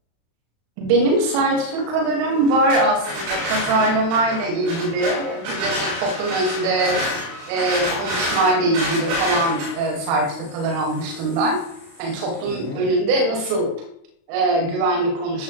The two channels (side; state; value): left; late; 35 ms